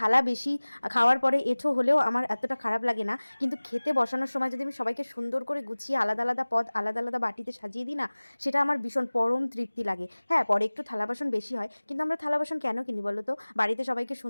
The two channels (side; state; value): both; inverted; correlation -1.00